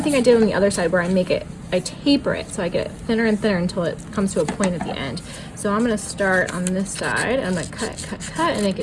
thing I did on the other side where I taper it. So I get it thinner and thinner until it comes to a point at the end. So I'm gonna start on this side. I'm gonna cut, and make it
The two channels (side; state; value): both; identical; correlation 1.00